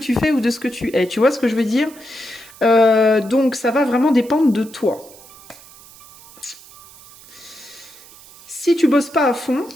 fais ou de ce que tu es. Tu vois ce que je veux dire? Donc ça va vraiment dépendre de toi. Si tu bosses pas à fond,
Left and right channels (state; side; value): noise; right; hiss, 22 dB below the sound